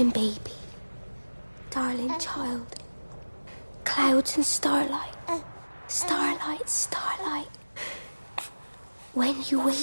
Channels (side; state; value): both; inverted; correlation -1.00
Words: baby. Darling child. Clouds and starlight. Starlight, starlight. When you